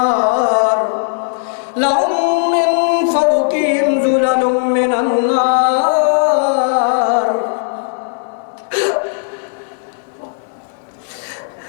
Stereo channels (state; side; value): silent; right; digital silence